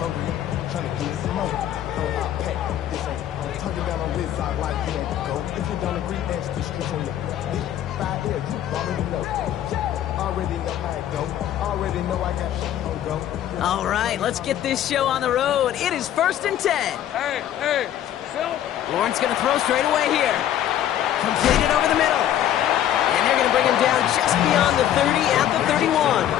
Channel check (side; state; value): right; quieter; 11.3 dB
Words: All right, let's get this show on the road. It is first and 10. Hey, Phil. Lawrence going to throw straight away here. Completed over the middle. And they're going to bring him down just beyond the 30 at the 31.